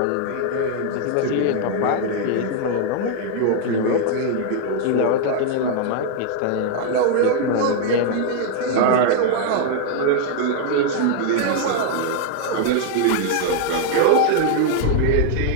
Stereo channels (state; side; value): different; both; correlation 0.00